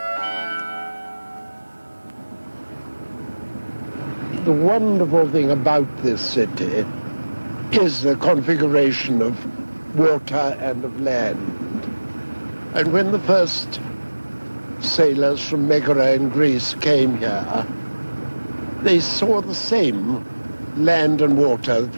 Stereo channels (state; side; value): inverted; both; correlation -1.00